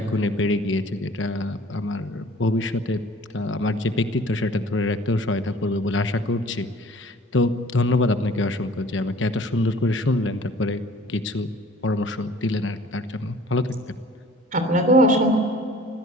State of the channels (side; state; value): both; normal; correlation 0.50